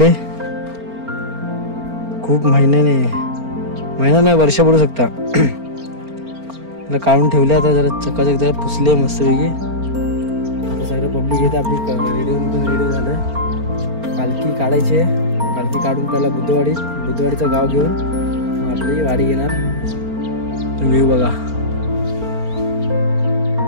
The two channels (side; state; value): left; late; 4.4 ms